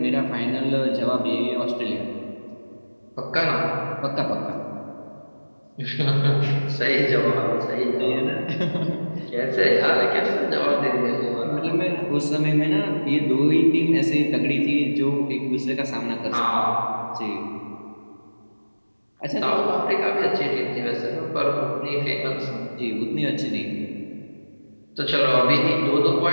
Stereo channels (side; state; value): both; inverted; correlation -1.00